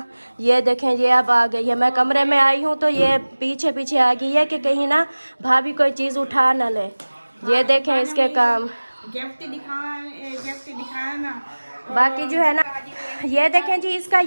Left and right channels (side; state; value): both; inverted; correlation -1.00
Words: ये देखें ये अब आ गई है, मैं कमरे में आई हूँ तो ये पीछे पीछे आ गई है कि कहीं ना भाभी कोई चीज़ उठा ना ले। ये देखें इसके काम। गिफ्ट दिखाया ना। बाकी जो है ना ये देखें जी, इसका